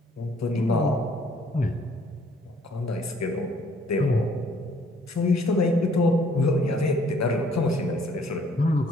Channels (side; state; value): both; normal; correlation 0.61